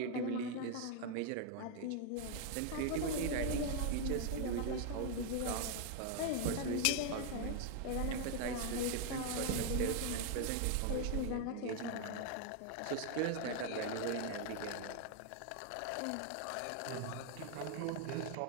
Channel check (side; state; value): both; different; correlation 0.00